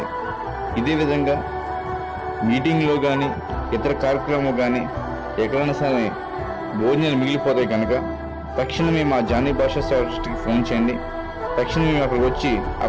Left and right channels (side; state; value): both; identical; correlation 1.00